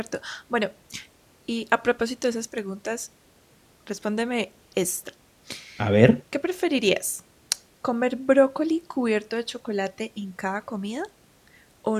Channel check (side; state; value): both; identical; correlation 1.00